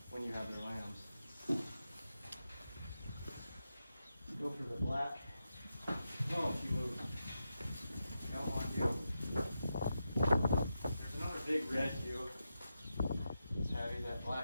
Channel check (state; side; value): inverted; both; correlation -0.88